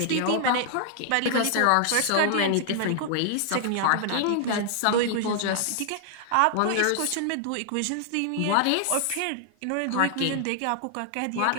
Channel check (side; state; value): both; different; correlation 0.00